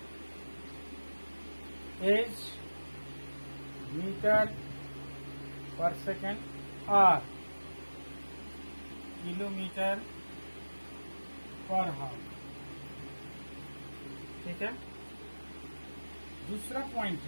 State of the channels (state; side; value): inverted; both; correlation -1.00